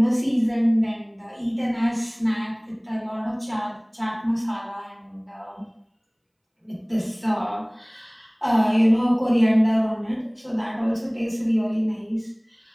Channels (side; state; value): both; identical; correlation 1.00